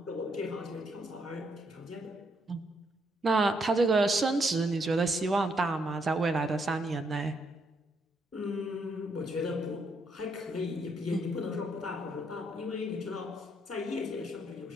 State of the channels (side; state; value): both; normal; correlation 0.74